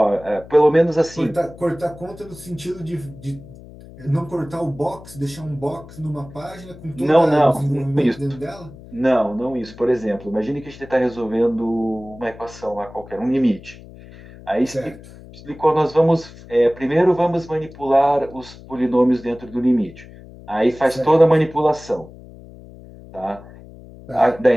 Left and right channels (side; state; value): left; noise; hum, 19 dB below the sound